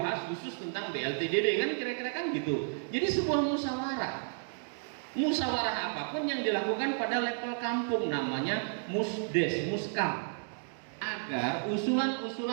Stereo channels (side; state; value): left; silent; digital silence